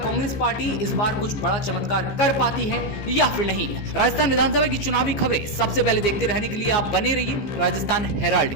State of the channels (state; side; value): late; right; 15 ms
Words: पार्टी इस बार कुछ बड़ा चमत्कार कर पाती है या फिर नहीं। राजस्थान विधानसभा की चुनावी खबरें सबसे पहले देखते रहने के लिए आप बने रहिए राजस्थान